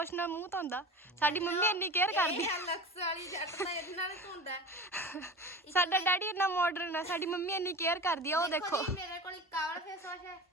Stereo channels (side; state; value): both; normal; correlation 0.34